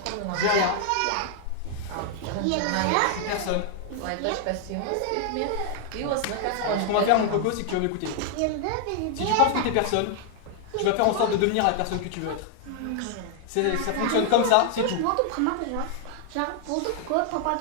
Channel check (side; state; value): both; different; correlation 0.00